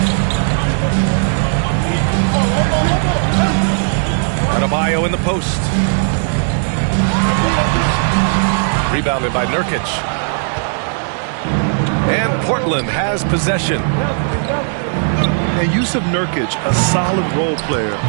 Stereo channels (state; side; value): silent; left; 64 dB below the other